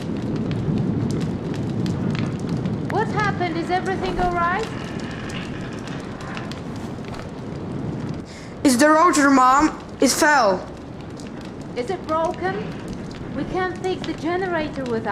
What happened? Is everything alright? It's the rotor, Mom. It fell. Is it broken? We can't fix the generator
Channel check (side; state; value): both; identical; correlation 1.00